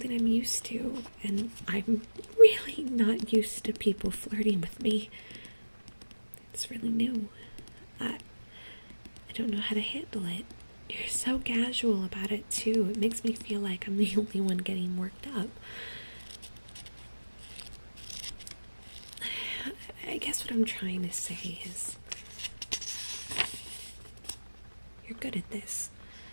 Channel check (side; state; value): both; inverted; correlation -1.00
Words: I'm used to, and I'm really not used to people flirting with me. It's really new. I don't know how to handle it. You're so casual about it, too. It makes me feel like I'm the only one getting worked up. I guess what I'm trying to say is, you're good at this,